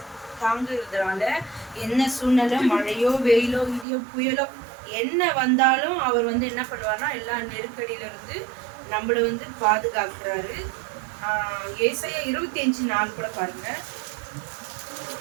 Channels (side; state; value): left; drops out; at 3.9 s